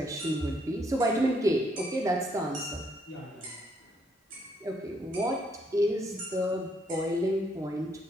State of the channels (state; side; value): normal; both; correlation 0.72